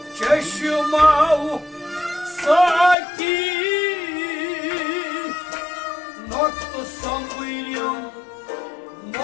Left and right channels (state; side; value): drops out; right; at 3.0 s